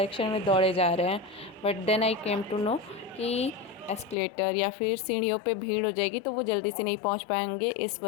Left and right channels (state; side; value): drops out; right; at 4.2 s